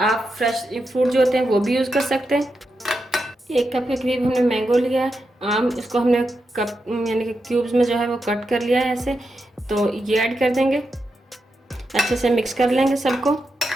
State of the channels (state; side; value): normal; both; correlation 0.87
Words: फ्रेश फ्रूट जो होते हैं वो भी यूज़ कर सकते हैं। 1 कप के करीब हमने मैंगो लिया है, आम। इसको हमने कप यानी कि क्यूब्स में जो है वो कट कर लिया है ऐसे। तो ये ऐड कर देंगे, अच्छे से मिक्स कर लेंगे सबको।